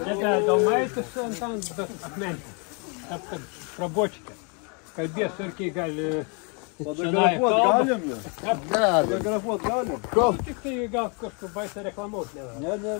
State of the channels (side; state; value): right; quieter; 35.4 dB